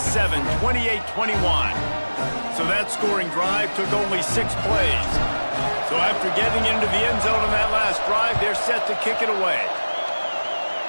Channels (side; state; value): both; inverted; correlation -1.00